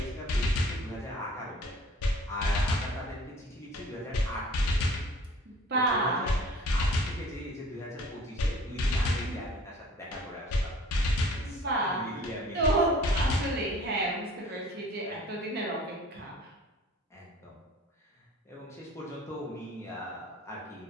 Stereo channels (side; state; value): both; normal; correlation 0.50